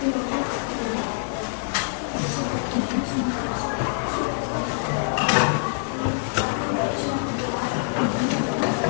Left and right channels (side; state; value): right; silent; digital silence